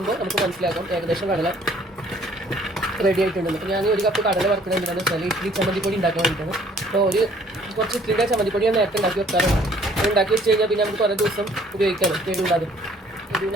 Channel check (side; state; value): both; normal; correlation 0.58